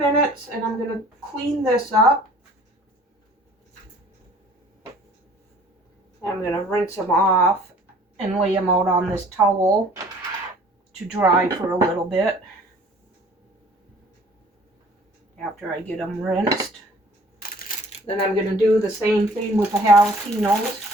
and I'm going to clean this up. I'm going to rinse them off and lay them out on this towel to dry for a little bit after I get them rinsed. Then I'm going to do the same thing with the jalapenos.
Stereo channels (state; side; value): normal; both; correlation 0.52